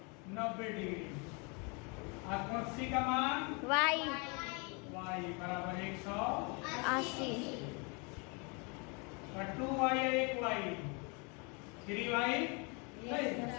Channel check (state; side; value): quieter; right; 32.4 dB